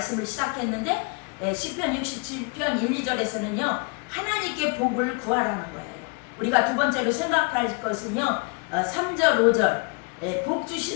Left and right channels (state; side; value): quieter; right; 34.3 dB